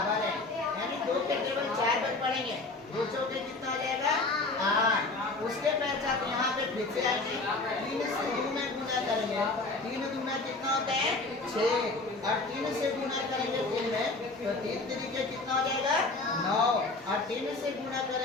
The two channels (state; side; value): quieter; right; 3.4 dB